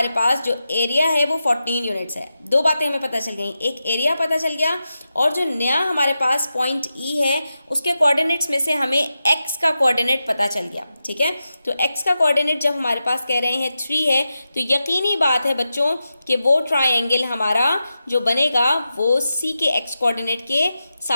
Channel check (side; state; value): both; inverted; correlation -0.90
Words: पास जो एरिया है वो 14 यूनिट्स है। दो बातें हमें पता चल गई, एक एरिया पता चल गया और जो नया हमारे पास पॉइंट E है उसके कोऑर्डिनेट्स में से हमें x का कोऑर्डिनेट पता चल गया। ठीक है, तो x का कोऑर्डिनेट जब हमारे पास कह रहे हैं 3 है तो यकीनी बात है बच्चों कि वो ट्राइंगल हमारा जो बनेगा वो C के x कोऑर्डिनेट के